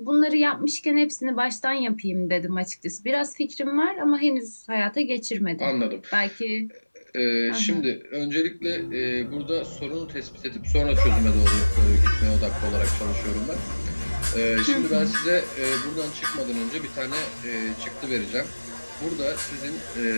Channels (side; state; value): both; inverted; correlation -1.00